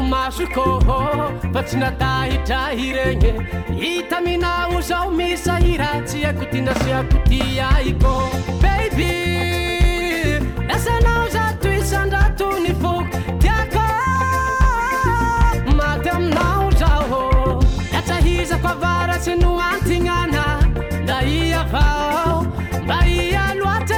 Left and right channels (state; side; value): identical; both; correlation 1.00